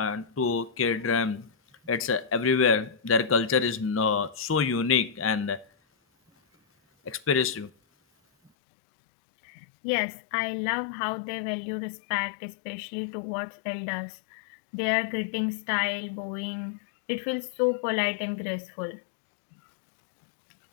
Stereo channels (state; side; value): drops out; right; at 8.5 s